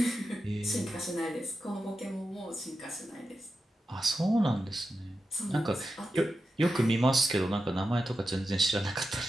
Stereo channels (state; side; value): normal; both; correlation 0.90